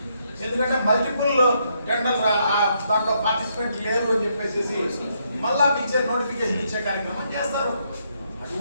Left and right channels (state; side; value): inverted; both; correlation -0.75